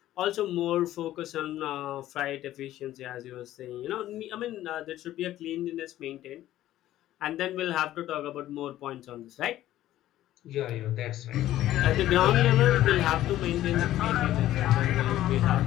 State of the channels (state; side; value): quieter; right; 13.8 dB